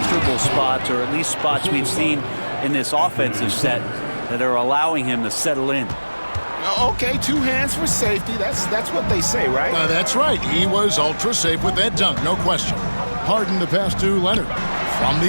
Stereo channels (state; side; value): inverted; both; correlation -1.00